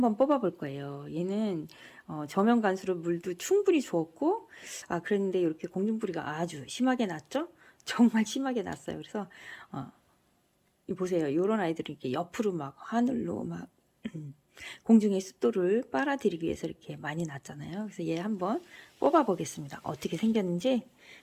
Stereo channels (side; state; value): both; identical; correlation 1.00